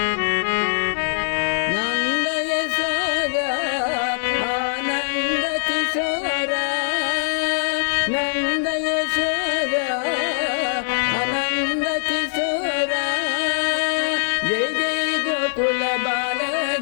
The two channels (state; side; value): silent; right; digital silence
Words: నంద యశోద ఆనంద కిశోర నంద యశోద ఆనంద కిశోర జై జై గోకుల బాల